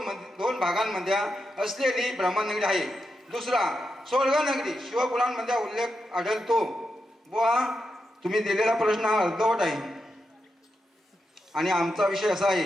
भागांमध्ये असलेली ब्रह्मनगरी आहे. दुसरा स्वर्ग नगरी शिवपुराणमध्ये उल्लेख आढळतो. बुवा तुम्ही दिलेला प्रश्न हा अर्धवट आहे आणि आमचा विषय असा आहे,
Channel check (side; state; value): both; normal; correlation 0.86